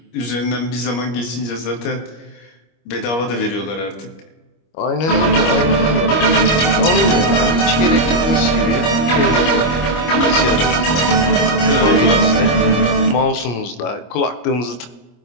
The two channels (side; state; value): right; late; 25 ms